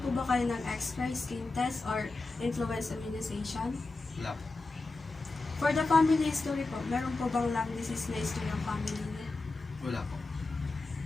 po ba kayo ng X-ray, skin test, or influenza immunization? Wala po. For the family history po, meron po bang lung disease na history ng family niyo? Wala po.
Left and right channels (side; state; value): right; quieter; 3.5 dB